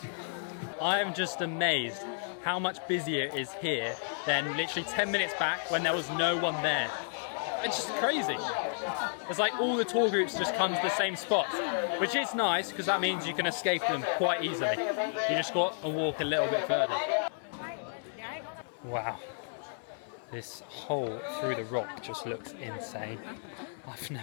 I am just amazed how much busier it is here than literally 10 minutes back when there was no one there. It's just crazy. It's like all the tour groups just come to the same spot, which is nice because that means you can escape them quite easily. You just got to walk a little bit further. Wow. This hole through the rock just looks insane. I've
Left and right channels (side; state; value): right; silent; digital silence